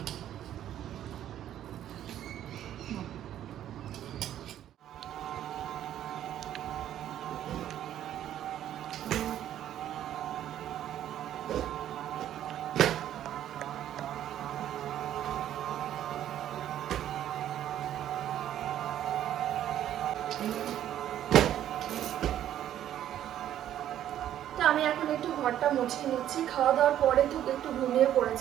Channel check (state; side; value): quieter; left; 11.4 dB